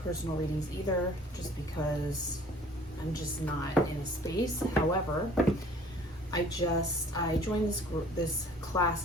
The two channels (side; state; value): both; normal; correlation 0.52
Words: readings either, just because I'm just not in a space. However, I joined this class